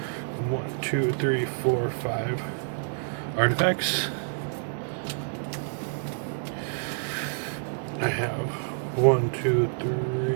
1, 2, 3, 4, 5 artifacts. I have 1, 2,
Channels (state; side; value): silent; left; digital silence